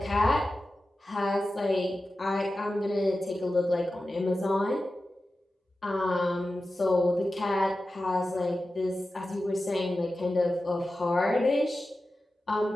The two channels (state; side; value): normal; both; correlation 0.93